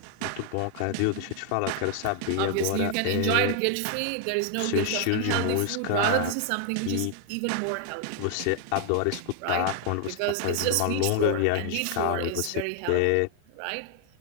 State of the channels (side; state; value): both; different; correlation 0.00